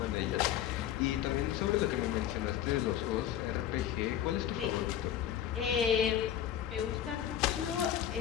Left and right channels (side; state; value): right; quieter; 10.6 dB